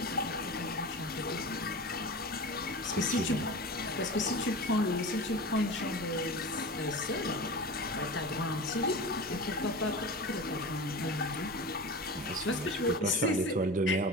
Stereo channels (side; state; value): both; normal; correlation 0.31